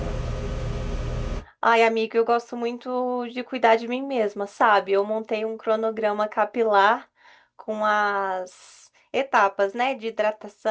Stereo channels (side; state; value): both; identical; correlation 1.00